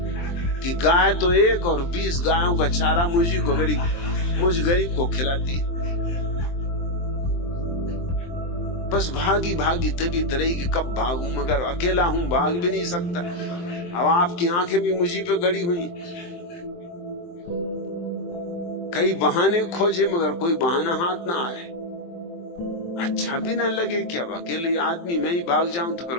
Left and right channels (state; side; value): late; right; 23 ms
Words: कि गाय तो एक और 20 गायों का चारा मुझ गरीब को खिला दी। बस भागी भागी तभी तरह की कब भागूं, मगर अकेला हूं, भाग भी नहीं सकता। अब आपकी आंखें भी मुझी पे गड़ी हुई। कई बहाने खोजे मगर कोई बहाना हाथ ना आए। अच्छा भी ना लगे कि अब अकेले आदमी मैं ही भाग जाऊं तो फिर